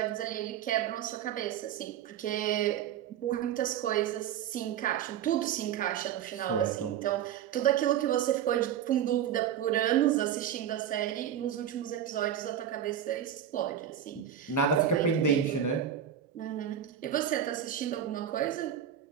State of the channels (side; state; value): left; quieter; 9.6 dB